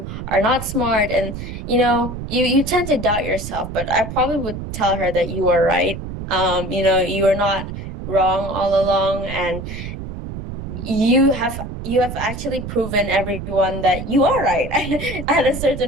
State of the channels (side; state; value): right; noise; rumble, 8 dB below the sound